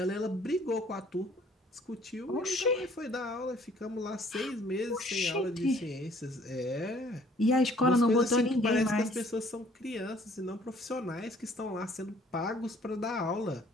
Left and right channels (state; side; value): normal; both; correlation 0.58